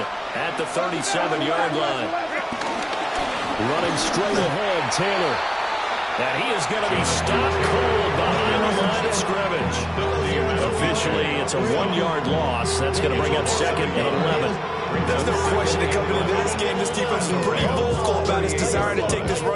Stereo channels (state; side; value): identical; both; correlation 1.00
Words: at the 37-yard line. Running straight ahead, Taylor. And he is going to be stopped cold behind the line of scrimmage. Officially, it's a 1-yard loss. That's going to bring up second and 11. There's no question that coming into this game, this defense is pretty vocal about his desire to take this